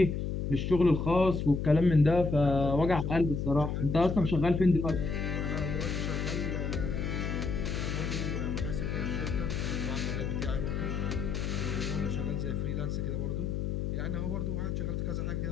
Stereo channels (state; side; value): noise; left; hum, 1 dB below the sound